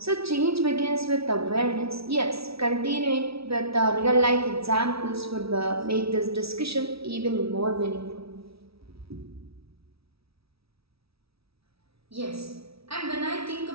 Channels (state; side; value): late; left; 0.76 ms